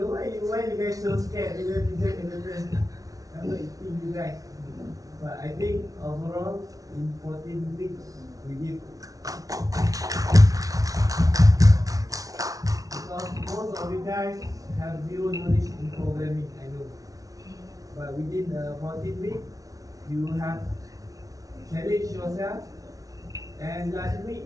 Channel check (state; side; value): late; left; 0.18 ms